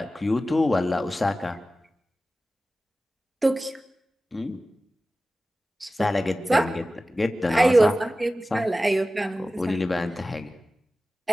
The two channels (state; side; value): normal; both; correlation 0.96